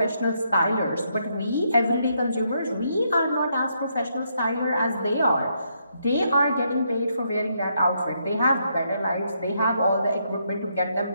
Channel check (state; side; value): inverted; both; correlation -0.76